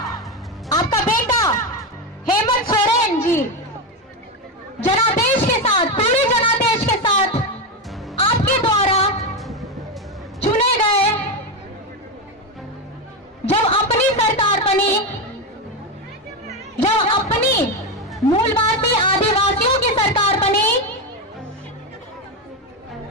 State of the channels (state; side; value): normal; both; correlation 0.12